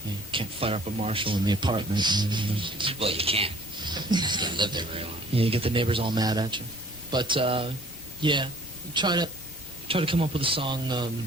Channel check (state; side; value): normal; both; correlation 0.55